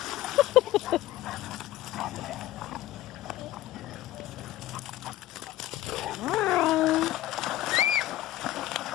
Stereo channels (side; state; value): right; quieter; 14.8 dB